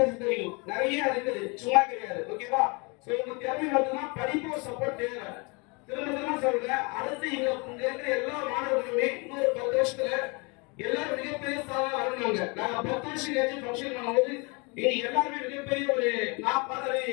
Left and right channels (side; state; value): right; quieter; 30.0 dB